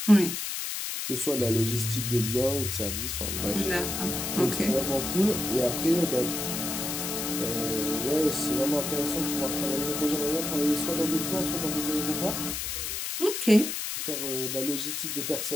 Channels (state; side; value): noise; left; hiss, 3 dB below the sound